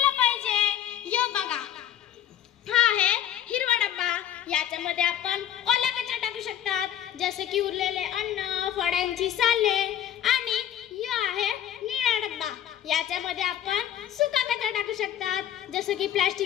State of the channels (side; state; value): right; quieter; 10.7 dB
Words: पाहिजे. यो बघा, हा आहे हिरवा डब्बा. याच्यामध्ये आपण ओला कचरा टाकू शकतात, जसे की उरलेले अन्न, फळांची साले. आणि यो आहे निळा डब्बा. याच्यामध्ये आपण सुका कचरा टाकू शकतात, जसे की